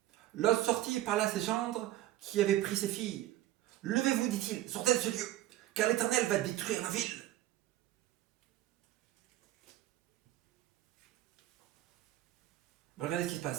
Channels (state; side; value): quieter; left; 14.6 dB